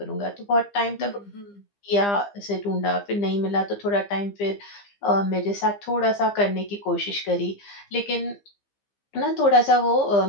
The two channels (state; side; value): late; right; 15 ms